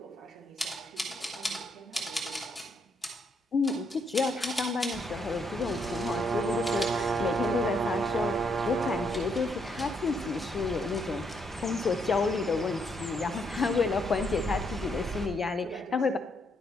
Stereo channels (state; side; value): normal; both; correlation 0.74